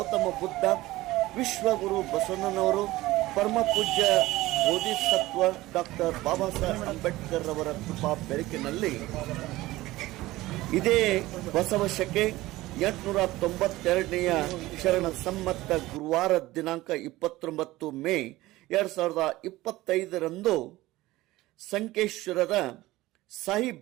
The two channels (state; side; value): quieter; left; 18.0 dB